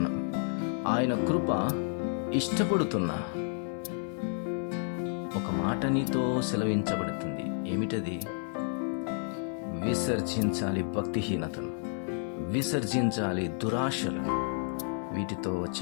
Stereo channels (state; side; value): silent; right; 57 dB below the other